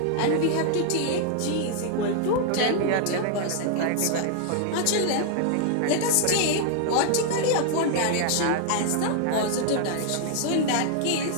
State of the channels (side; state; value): both; different; correlation 0.00